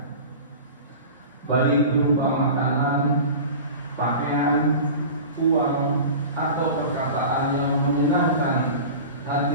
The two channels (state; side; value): inverted; both; correlation -0.35